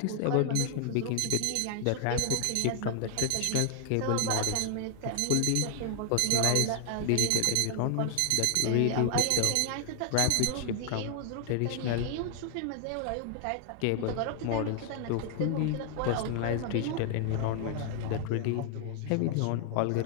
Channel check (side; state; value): both; different; correlation 0.00